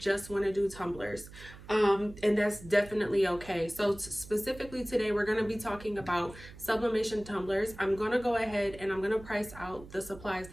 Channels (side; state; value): right; noise; hum, 17 dB below the sound